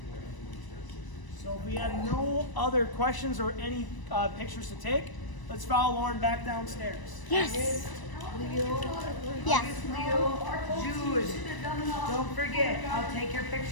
So if we have no other questions or any pictures to take, let's follow Lauren back downstairs. Yes. Yes. Leo, Jude, don't forget, I'll take your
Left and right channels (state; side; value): late; right; 1.0 ms